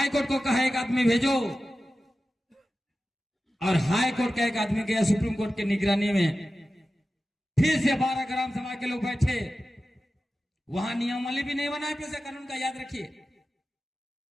कोर्ट को कहा एक आदमी भेजो, और हाई कोर्ट का एक आदमी गया सुप्रीम कोर्ट की निगरानी में। फिर से 12 ग्राम सभा के लोग बैठे, वहां नियमावली भी नहीं बनाए पेशा कानून का, याद रखिए।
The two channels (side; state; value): both; normal; correlation 0.94